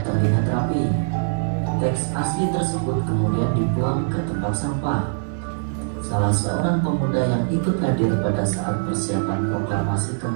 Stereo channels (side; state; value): left; silent; 56 dB below the other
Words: terlihat rapi. Teks asli tersebut kemudian dibuang ke tempat sampah. Salah seorang pemuda yang ikut hadir pada saat persiapan proklamasi